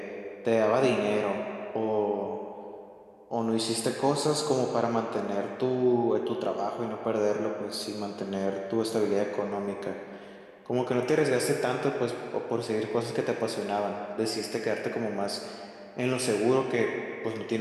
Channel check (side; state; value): both; identical; correlation 1.00